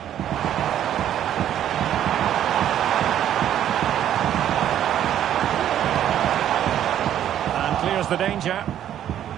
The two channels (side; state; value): left; quieter; 10.8 dB